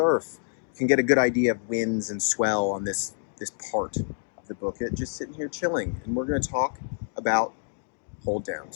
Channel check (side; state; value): right; silent; 60 dB below the other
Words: can get a good idea of winds and swell on this part of the Bookit, just sitting here chilling. And we're gonna talk about hold